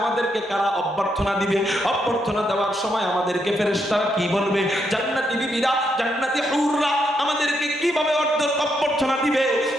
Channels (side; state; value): both; normal; correlation 0.79